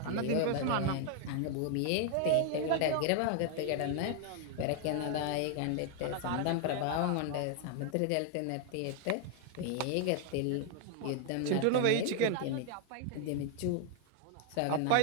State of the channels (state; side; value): different; both; correlation 0.00